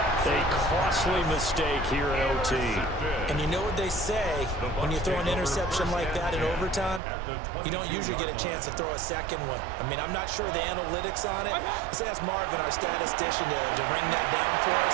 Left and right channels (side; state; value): left; drops out; at 7.0 s